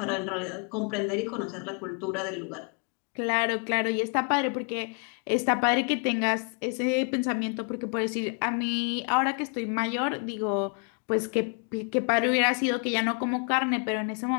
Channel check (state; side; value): quieter; right; 39.9 dB